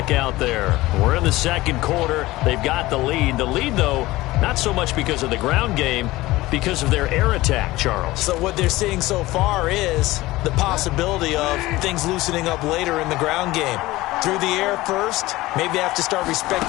out there. We're in the second quarter. They've got the lead. The lead, though, not so much because of the ground game, because of their air attack, Charles. So what they're seeing so far is the possibility of things loosening up later in the ground game. Through the air first, maybe they have to start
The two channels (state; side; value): quieter; right; 18.6 dB